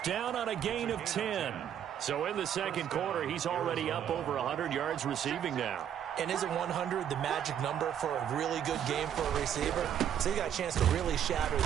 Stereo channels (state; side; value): quieter; left; 9.6 dB